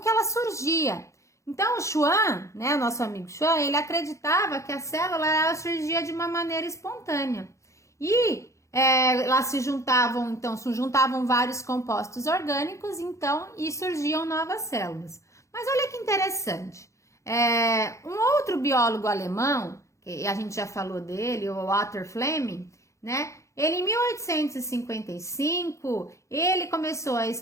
que ela surgia. Então, o Schwann, né, o nosso amigo Schwann, ele acreditava que a célula ela surgia de uma maneira espontânea. E lá se juntavam vários compostos orgânicos, então, e surgiam novas células. Mas olha que interessante. Um outro biólogo alemão, que a gente já falou dele, o Walter Fleming, né? Ele, em 1855, ele começou a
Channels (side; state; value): right; late; 0.15 ms